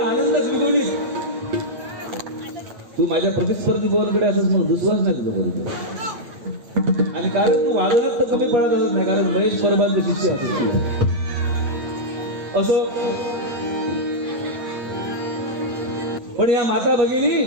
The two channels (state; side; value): late; left; 8.4 ms